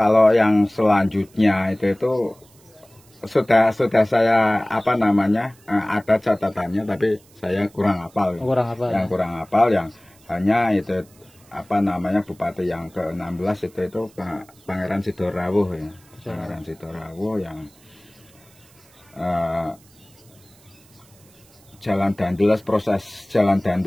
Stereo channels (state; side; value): noise; right; hiss, 28 dB below the sound